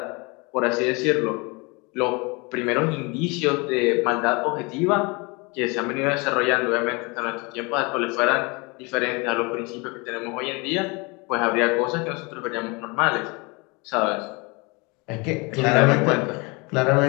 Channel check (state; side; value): quieter; right; 28.2 dB